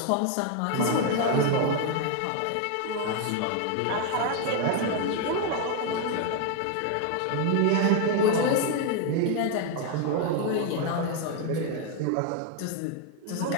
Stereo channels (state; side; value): different; both; correlation 0.01